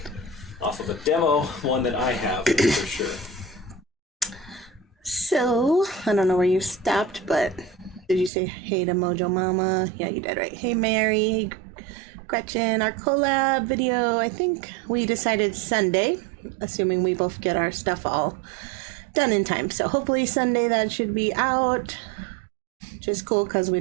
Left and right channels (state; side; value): drops out; left; at 8.3 s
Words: off of a demo, one that I have for sure. So, I don't know where you stopped, but did you say hey to Mojo Mama? Yeah, you did, right? Hey Mary, hey Gretchen, our collab video, I think we decided Sunday, assuming we both get our stuff all done in time. So hopefully Sunday that should be out, which is cool because we